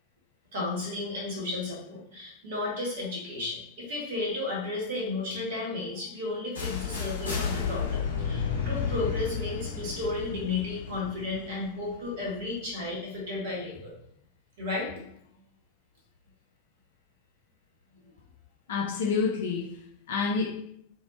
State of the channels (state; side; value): quieter; right; 3.8 dB